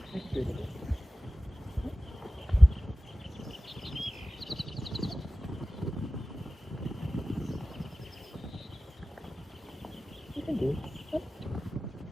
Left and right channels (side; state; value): both; normal; correlation 0.96